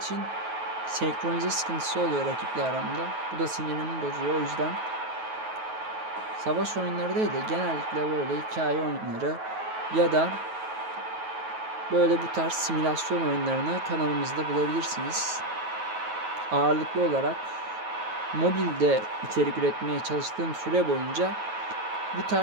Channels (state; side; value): late; left; 9.3 ms